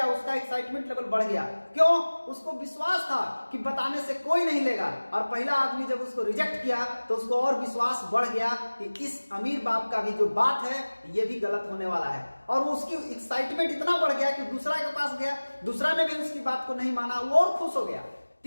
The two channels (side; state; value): both; inverted; correlation -1.00